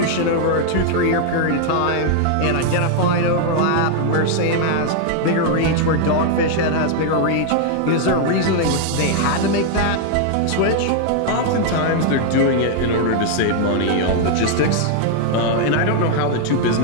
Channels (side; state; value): both; different; correlation 0.00